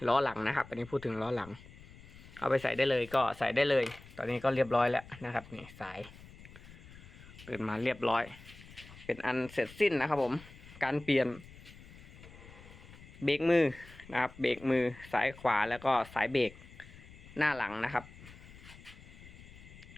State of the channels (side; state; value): left; noise; rumble, 19 dB below the sound